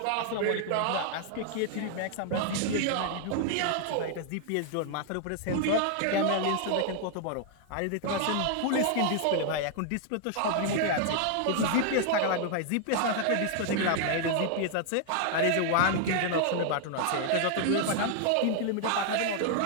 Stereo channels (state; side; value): different; both; correlation 0.00